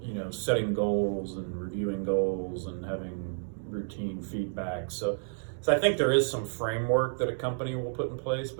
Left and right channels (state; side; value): silent; left; digital silence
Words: setting goals and reviewing goals and having routine feedback. So I think there is some framework that a company will put in place,